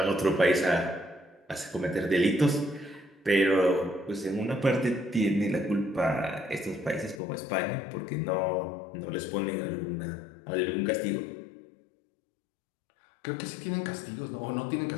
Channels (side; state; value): right; drops out; at 7.2 s